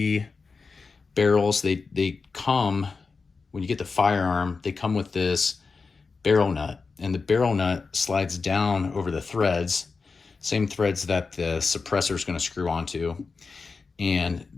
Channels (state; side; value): quieter; right; 4.6 dB